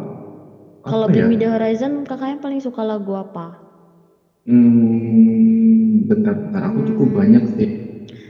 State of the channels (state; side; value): identical; both; correlation 1.00